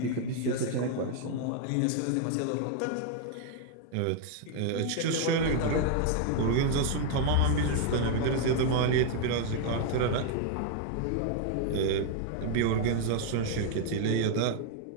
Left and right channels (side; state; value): both; different; correlation 0.00